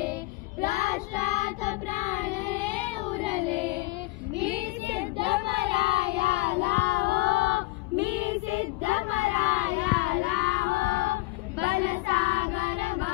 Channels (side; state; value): right; quieter; 22.2 dB